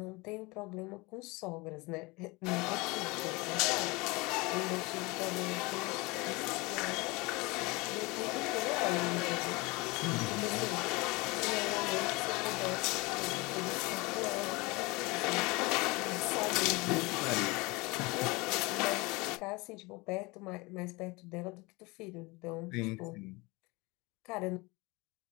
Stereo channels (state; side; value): quieter; right; 24.8 dB